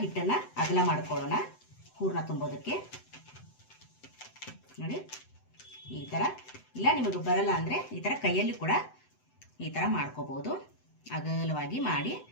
ಹಿಟ್ಟನ್ನು ಅಗಲ ಮಾಡ್ಕೊಳ್ಳೋಣ ಹೂರ್ಣ ತುಂಬೋದಕ್ಕೆ. ನೋಡಿ ಈ ಥರ, ಇಲ್ಲ ನಿಮಗೆ ಬರಲ್ಲ ಅಂದರೆ ಈ ಥರ ಕೈಯಲ್ಲಿ ಕೂಡ ಈ ಥರ ಮಾಡ್ಕೋಬೋದು. ಅಗಲವಾಗಿ ಮಾಡಿ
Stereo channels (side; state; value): right; late; 7.9 ms